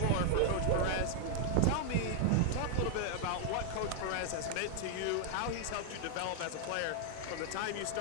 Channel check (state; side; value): different; both; correlation 0.00